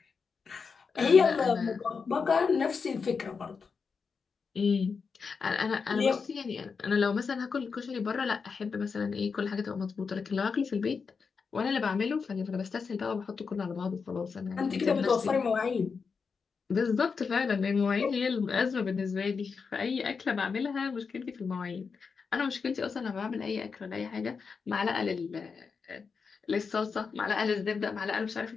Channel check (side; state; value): right; quieter; 5.4 dB